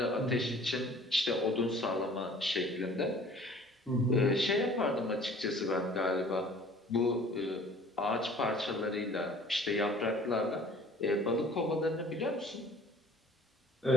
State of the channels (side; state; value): both; normal; correlation 0.51